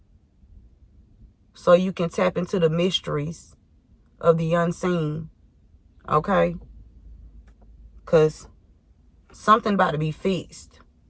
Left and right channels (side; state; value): both; identical; correlation 1.00